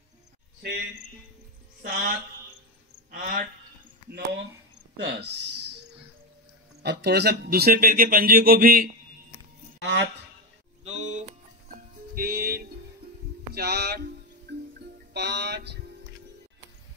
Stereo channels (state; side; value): normal; both; correlation 0.12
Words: 6 7 8 9 10। अब थोड़ा सा दूसरे पैर के पंजे को भी 8 2 3 4 5,